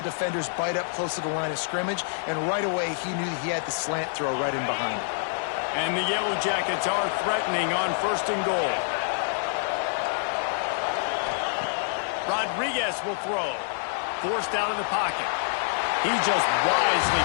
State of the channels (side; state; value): right; silent; digital silence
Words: defenders bite up close to the line of scrimmage, and right away he knew he had the slant throw right in behind him. And the Yellow Jackets are threatening on 1st and goal. Rodriguez will throw. Forced out of the pocket. He just wisely